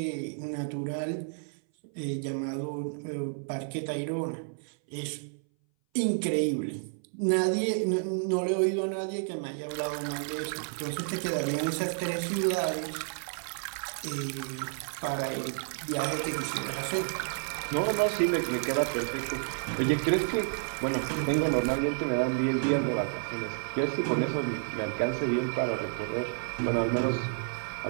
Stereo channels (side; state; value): left; silent; 57 dB below the other